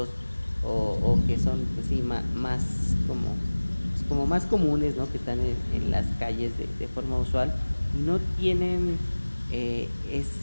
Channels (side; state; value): both; inverted; correlation -1.00